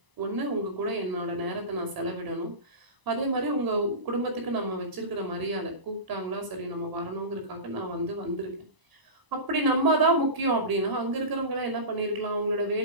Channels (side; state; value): left; late; 1.0 ms